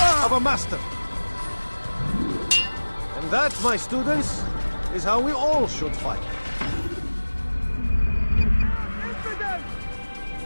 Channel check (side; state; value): both; inverted; correlation -1.00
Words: of a master. And that, my students, is how we all should fight.